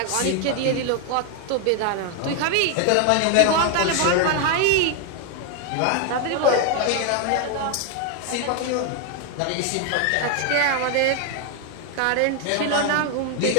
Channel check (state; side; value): different; both; correlation 0.01